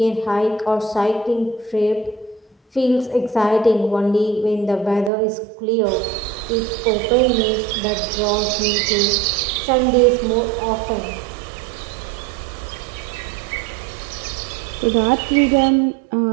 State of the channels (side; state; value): left; drops out; at 5.1 s